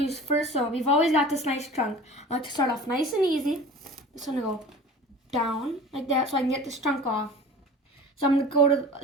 is first, so we've always got this nice chunk. I like to start off nice and easy. Just gonna go down like that so I can get this chunk off. So I'm gonna go to,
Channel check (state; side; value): normal; both; correlation 0.39